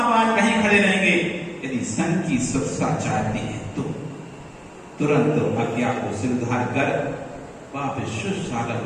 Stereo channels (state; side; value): identical; both; correlation 1.00